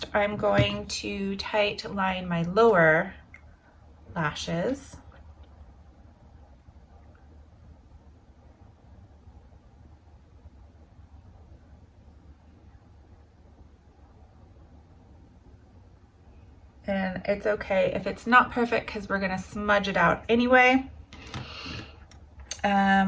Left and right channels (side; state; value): both; identical; correlation 1.00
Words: I'm going to tight line my lower lashes. And it's okay if it's not perfect because we're gonna smudge it out anyway.